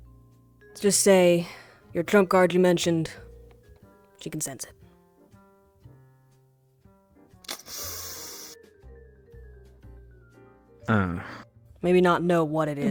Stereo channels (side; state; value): both; identical; correlation 1.00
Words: Let's just say your trump card you mentioned, she can sense it. Maybe not know what it